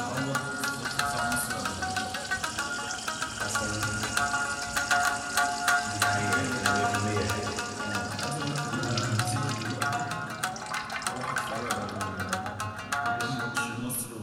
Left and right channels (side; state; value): both; identical; correlation 1.00